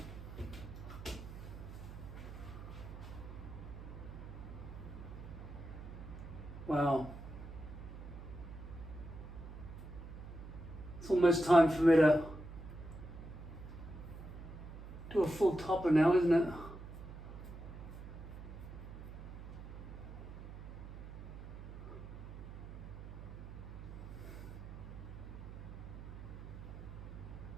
Wow. It's almost time for me to do a full topper now, isn't it?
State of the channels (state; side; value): noise; right; hum, 11 dB below the sound